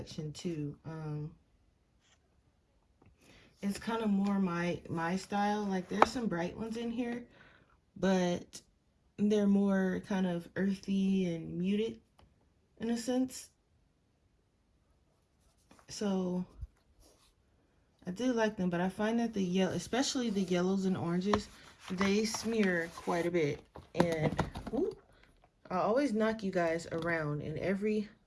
too. It's kind of more my style. Like there's some bright ones in here, but they're more kind of earthy and muted in a sense. So I do like them, but I find that the yellow, especially the yellows and oranges, they smear quite a bit. And whoop, I always knock you guys around in every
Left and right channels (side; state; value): both; identical; correlation 1.00